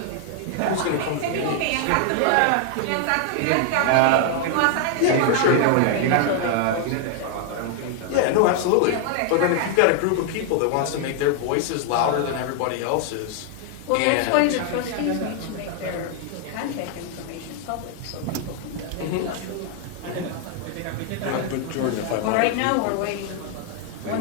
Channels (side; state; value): both; different; correlation 0.00